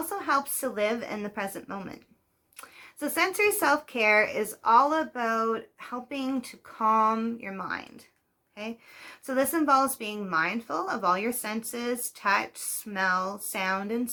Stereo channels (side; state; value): both; identical; correlation 1.00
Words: helps to live in the present moment. So sensory self-care is all about helping to calm your mind. Okay? So this involves being mindful of all your senses: touch, smell, sound, and